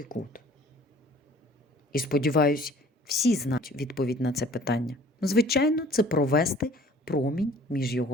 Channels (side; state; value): both; normal; correlation 0.52